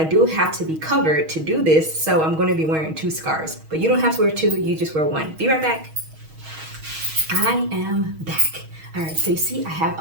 do have to be covered to do this. So I'm gonna be wearing two scarves, but you don't have to wear two, you just wear one. Be right back. I am back. All right, so you see I have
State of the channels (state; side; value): late; left; 6.3 ms